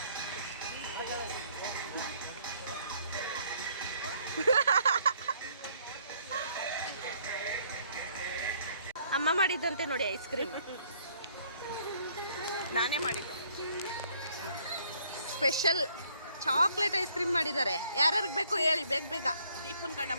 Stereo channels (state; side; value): inverted; both; correlation -0.64